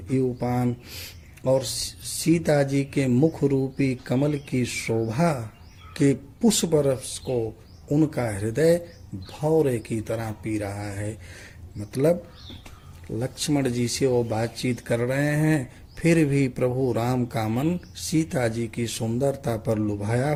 इवपान, और सीता जी के मुख रूपी कमल की शोभा के पुष्प रस को उनका हृदय भौरे की तरह पी रहा है। मतलब लक्ष्मण जी से वो बातचीत कर रहे हैं, फिर भी प्रभु राम का मन सीता जी की सुंदरता पर लुभाया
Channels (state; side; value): identical; both; correlation 1.00